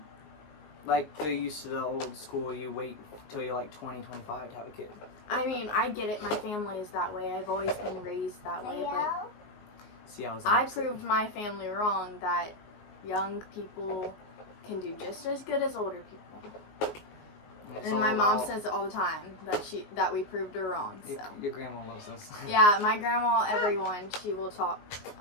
Like they're used to the old school. You wait till you're like 20, 25 to have a kid. I mean, I get it. My family is that way. I've always been raised that way, but See, I proved my family wrong that young people can do just as good as older people. And my mom says it all the time that we proved her wrong. So. Your grandma loves us. Yeah, my grandma, everyone, she will talk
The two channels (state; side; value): late; right; 19 ms